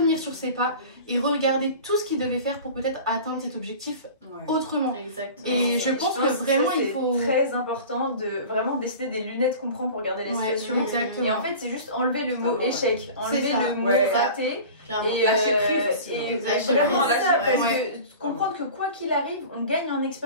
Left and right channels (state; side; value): inverted; both; correlation -0.38